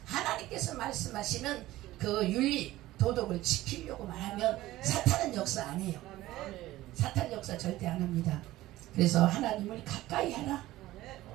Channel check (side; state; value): left; quieter; 16.4 dB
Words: 하나님께서 말씀하시는 그 윤리, 도덕을 지키려고만 하면 사탄은 역사 안 해요. 사탄 역사 절대 안 합니다. 그래서 하나님을 가까이 하라.